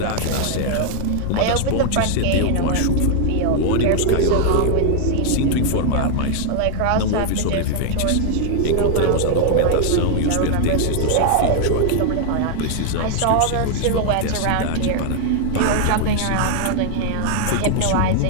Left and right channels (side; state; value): both; different; correlation 0.00